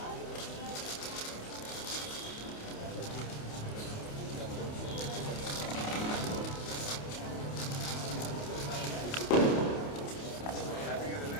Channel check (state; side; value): late; right; 28 ms